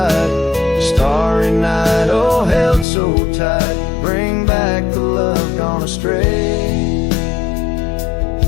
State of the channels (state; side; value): drops out; right; at 2.9 s